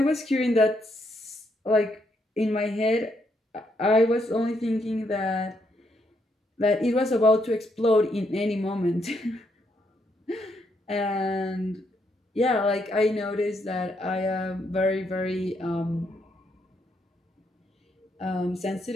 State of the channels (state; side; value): normal; both; correlation 0.76